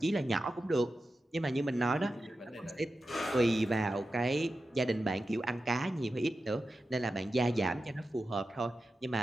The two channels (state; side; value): normal; both; correlation 0.92